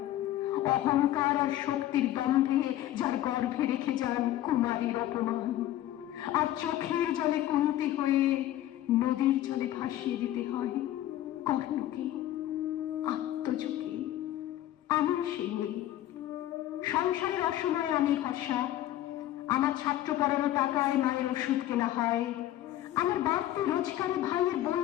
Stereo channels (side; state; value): right; quieter; 13.5 dB